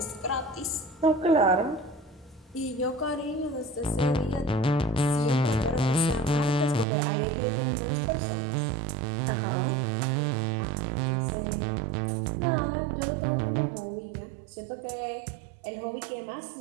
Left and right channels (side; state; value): left; drops out; at 6.9 s